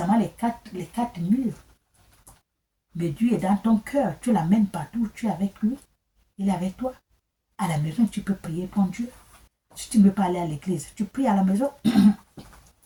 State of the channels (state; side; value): identical; both; correlation 1.00